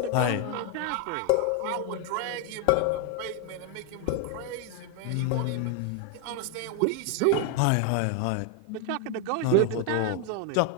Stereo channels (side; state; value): both; different; correlation 0.01